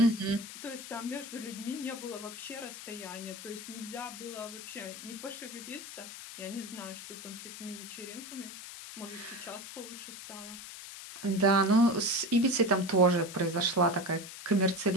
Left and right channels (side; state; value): left; noise; hiss, 11 dB below the sound